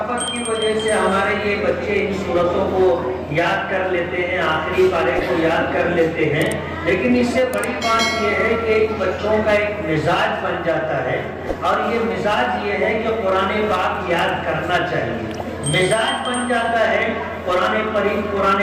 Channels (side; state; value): both; identical; correlation 1.00